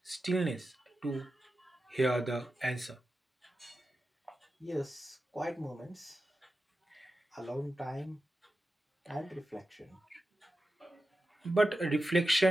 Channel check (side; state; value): both; normal; correlation 0.92